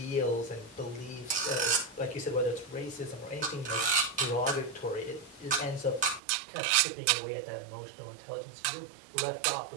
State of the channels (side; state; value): left; drops out; at 6.2 s